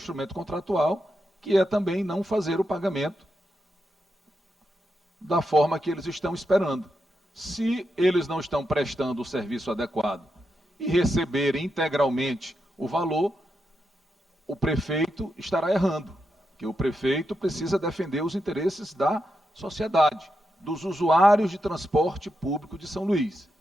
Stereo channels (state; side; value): normal; both; correlation 0.85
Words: contratual, que é também não fazer o pagamento da forma que eles estão esperando. Se eles não estão prestando o serviço adequado e receberem integralmente o valor, o prefeito estará errando, porque o prefeito precisa defender os interesses da sociedade, dos usuários de transporte público de São Luís.